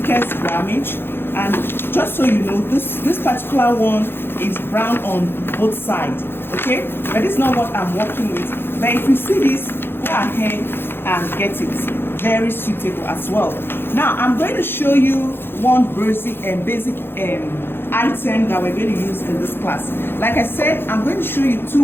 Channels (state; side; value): late; right; 0.10 ms